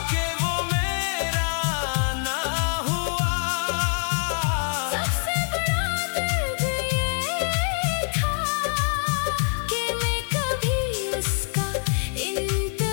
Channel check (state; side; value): silent; right; 60 dB below the other